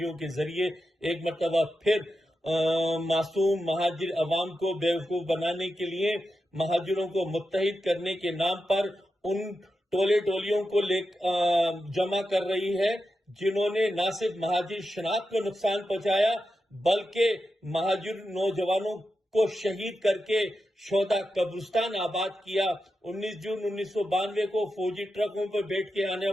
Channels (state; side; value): normal; both; correlation 0.89